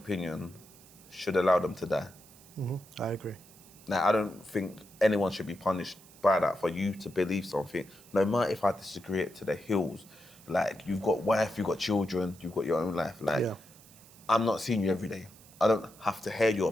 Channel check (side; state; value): right; noise; hiss, 23 dB below the sound